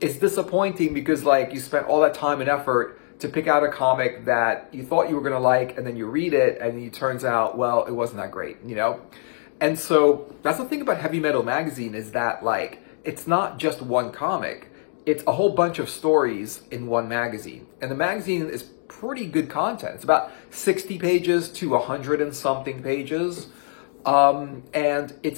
disappointing because like you spent all that time and effort to pick out a comic that you thought you were going to like and then you read it and it turns out, well, it wasn't that great, you know? And so that's the thing about Heavy Metal Magazine is that like, it's not just one comic. It's a whole bunch of stories in one magazine. And the magazine is pretty good content. It's about 60 pages to 100 and something pages. And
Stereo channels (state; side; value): silent; right; 63 dB below the other